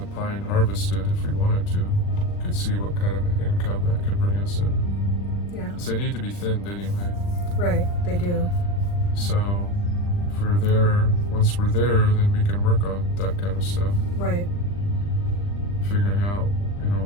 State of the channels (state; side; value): late; right; 40 ms